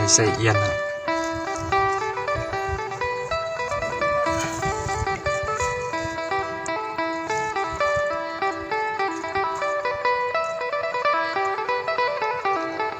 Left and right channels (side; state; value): both; identical; correlation 1.00